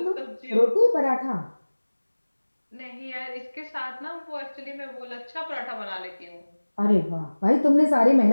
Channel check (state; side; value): inverted; both; correlation -1.00